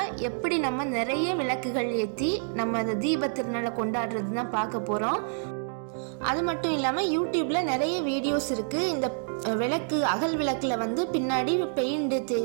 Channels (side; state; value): left; silent; digital silence